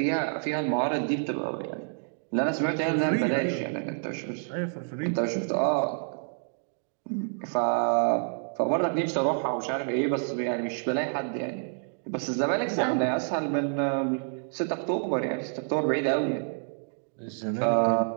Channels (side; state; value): left; silent; digital silence